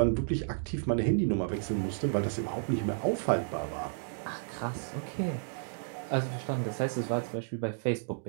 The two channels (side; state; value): left; silent; digital silence